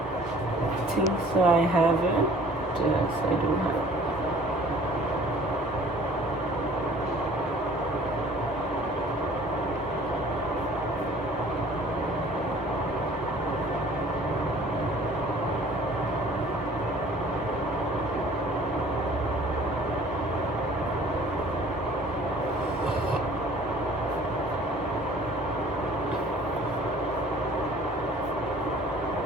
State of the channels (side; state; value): both; normal; correlation 0.51